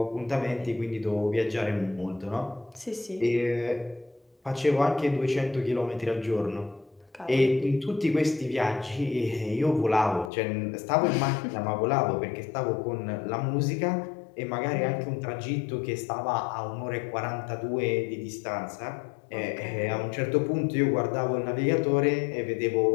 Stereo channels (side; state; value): right; drops out; at 10.3 s